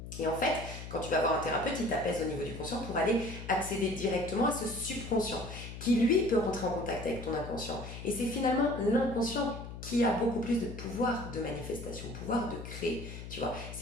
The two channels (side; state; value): left; noise; hum, 10 dB below the sound